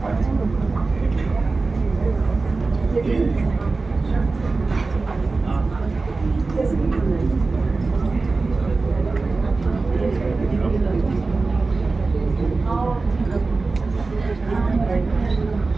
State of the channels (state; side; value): quieter; left; 3.8 dB